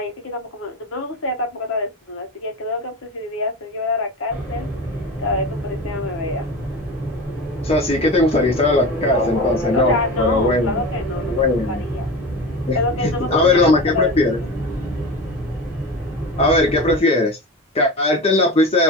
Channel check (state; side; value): normal; both; correlation 0.29